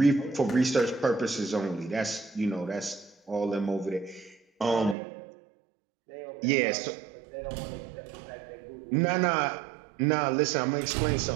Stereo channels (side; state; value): left; drops out; at 5.0 s